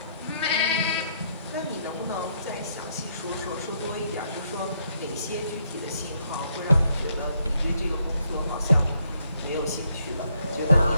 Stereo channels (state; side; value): inverted; both; correlation -0.73